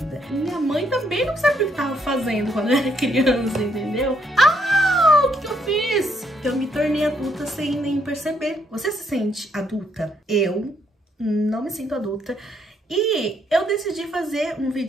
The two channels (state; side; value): normal; both; correlation 0.72